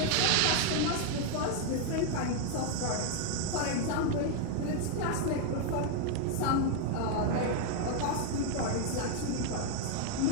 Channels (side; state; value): both; different; correlation 0.00